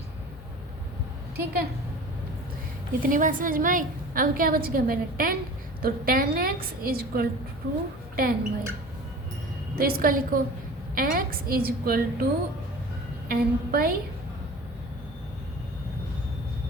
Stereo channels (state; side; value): normal; both; correlation 0.40